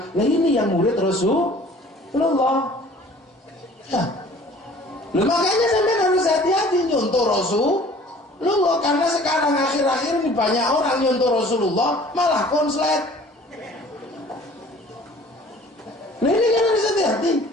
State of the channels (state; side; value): normal; both; correlation 0.50